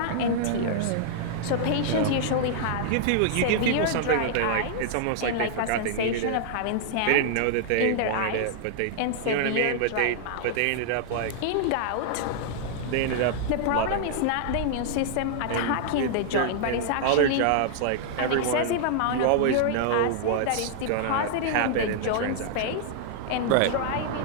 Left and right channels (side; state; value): both; different; correlation -0.01